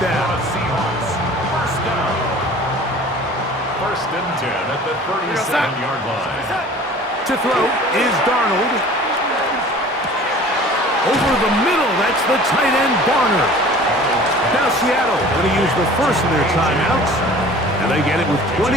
down. Seahawks, 1st down. 1st and 10 at the 37-yard line. To throw is Darnold. Over the middle, that's the tight end, Barner. Now Seattle going to use the first of their timeouts, and they get it with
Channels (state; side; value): normal; both; correlation 0.45